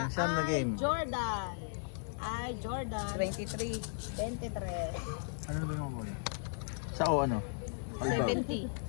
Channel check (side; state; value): right; silent; 54 dB below the other